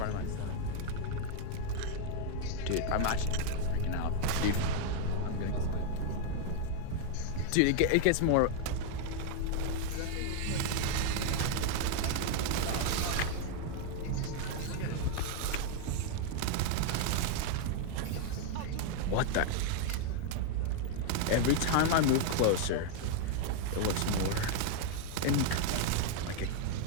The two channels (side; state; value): both; different; correlation 0.00